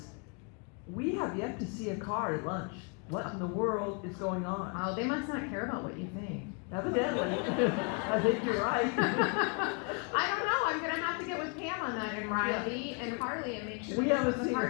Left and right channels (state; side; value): quieter; right; 36.2 dB